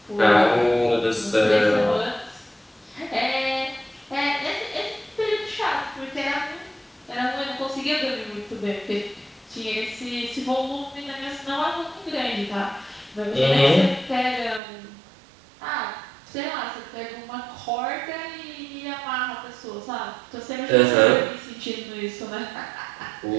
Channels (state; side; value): drops out; left; at 14.6 s